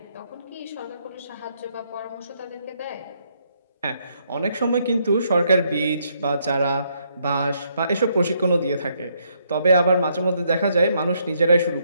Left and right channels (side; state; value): both; inverted; correlation -0.73